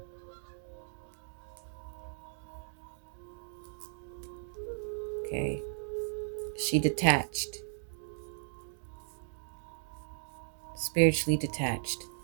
She detached, spiritually detached.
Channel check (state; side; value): silent; left; digital silence